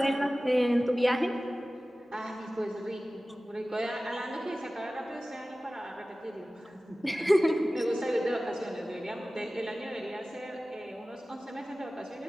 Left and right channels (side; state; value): both; normal; correlation 0.97